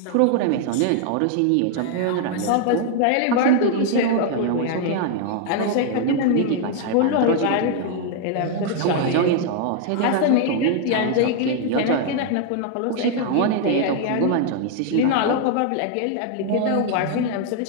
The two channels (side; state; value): both; different; correlation 0.00